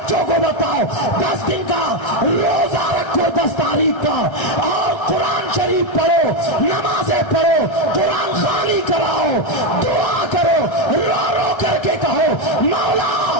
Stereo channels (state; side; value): late; right; 1.3 ms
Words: को बताओ 10 दिन का रोजा रखो, 10 तारीख का, और कुरान शरीफ पढ़ो, नमाजें पढ़ो, कुरान खानी कराओ, दुआ करो, रो रो करके कहो मौला